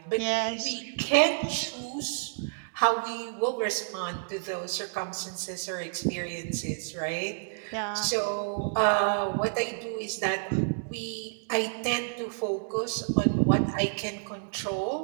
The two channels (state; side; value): silent; left; digital silence